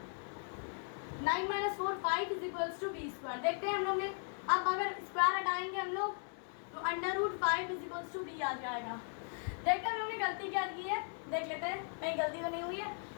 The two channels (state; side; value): silent; right; 53 dB below the other